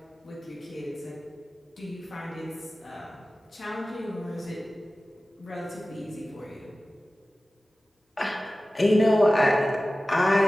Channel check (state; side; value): normal; both; correlation 0.96